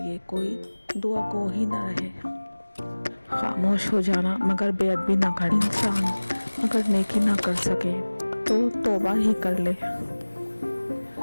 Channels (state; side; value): inverted; both; correlation -1.00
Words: لیے کوئی دعا گو ہی نہ رہے۔ خاموش ہو جانا مگر بے ادبی نہ کرنا۔ انسان اگر نیکی نہ کر سکے تو توبہ ہی کر لے۔